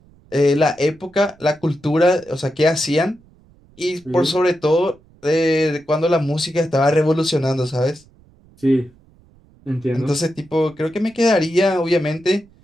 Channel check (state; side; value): noise; right; rumble, 29 dB below the sound